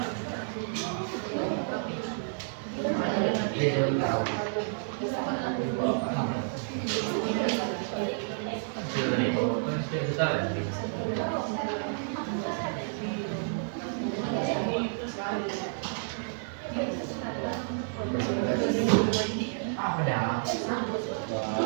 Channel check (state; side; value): silent; left; digital silence